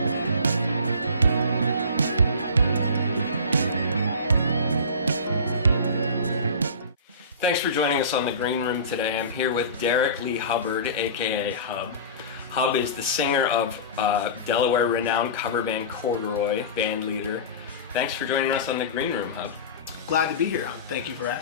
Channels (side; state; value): both; inverted; correlation -0.34